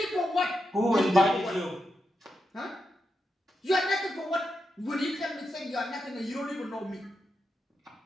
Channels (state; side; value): normal; both; correlation 0.86